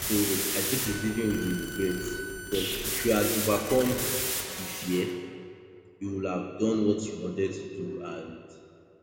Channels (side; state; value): both; identical; correlation 1.00